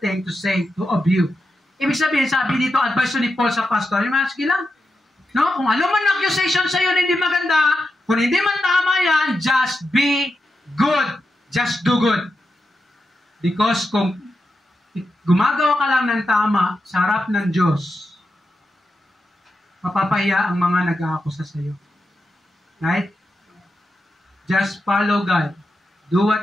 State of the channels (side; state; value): both; normal; correlation 0.88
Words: to say of you. Ibig sabihin, sabi dito, advice ni Paul sa pastor, sige lang, kung ano man accusation sa iyo na hindi maganda, kung hindi man tama yan, just be good. Just do good. Because kung gumagawa ka lang ng tama sa harap ng Diyos, mapapahiya ang mga nag-aakusa sa iyo. Right? Just follow God. Do